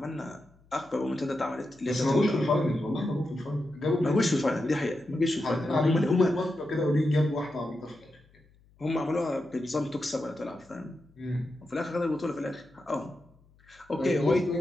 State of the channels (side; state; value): left; noise; hum, 30 dB below the sound